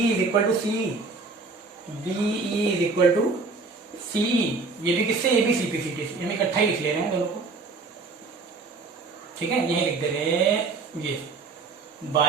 is equal to C, BE is equal to CE. ये भी किससे, ये भी सीपीसीटी से, हम इकट्ठा ही लिख ले रहे हैं दोनों को। ठीक है, यही लिख दे रहे हैं ये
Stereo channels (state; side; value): quieter; left; 3.9 dB